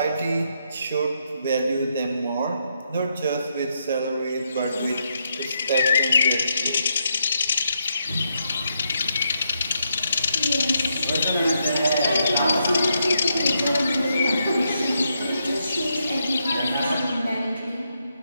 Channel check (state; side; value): inverted; both; correlation -0.80